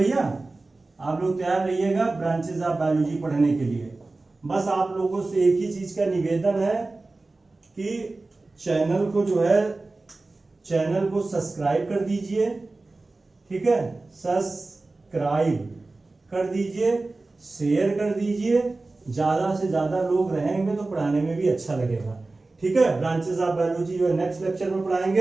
आप लोग तैयार रहिएगा ब्रांचेस ऑफ बायोलॉजी पढ़ने के लिए। बस आप लोगों से एक ही चीज का निवेदन है कि चैनल को सब्सक्राइब कर दीजिए, ठीक है, सब्सक्राइब कर दीजिए, शेयर कर दीजिए। ज्यादा से ज्यादा लोग रहेंगे तो पढ़ाने में भी अच्छा लगेगा। ठीक है, ब्रांचेस ऑफ बायोलॉजी जो है नेक्स्ट लेक्चर में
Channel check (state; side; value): quieter; left; 3.3 dB